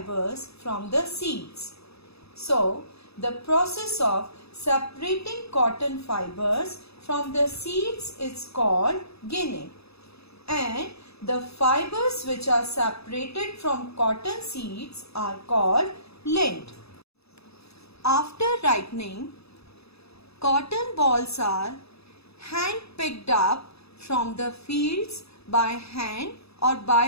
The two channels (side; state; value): right; late; 0.78 ms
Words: from the seeds. So the process of separating cotton fibers from the seeds is called ginning, and the fibers which are separated from cotton seeds are called lint. After ripening, cotton balls are hand picked up from the fields by hand or